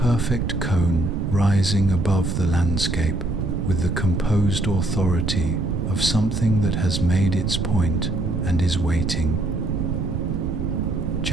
cone rising above the landscape with the composed authority of something that has made its point and is waiting.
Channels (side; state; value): right; noise; rumble, 2 dB below the sound